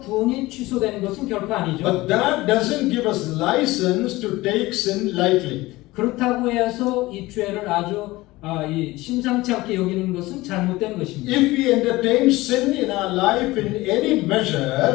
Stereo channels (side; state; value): right; quieter; 19.5 dB